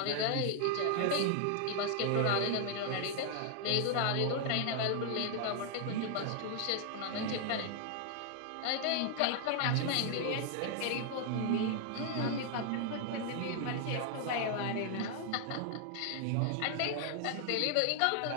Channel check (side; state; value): both; different; correlation 0.00